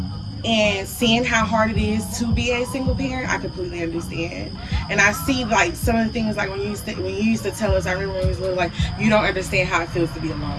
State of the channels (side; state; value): both; identical; correlation 1.00